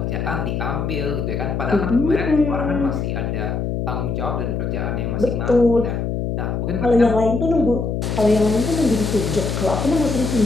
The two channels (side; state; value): left; noise; hum, 2 dB below the sound